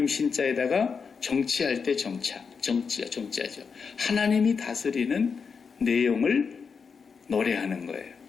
신자에다가 정치할 때 정치하죠. 하나님이 다스리는 내용을 노래하는 거예요.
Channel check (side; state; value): right; quieter; 5.7 dB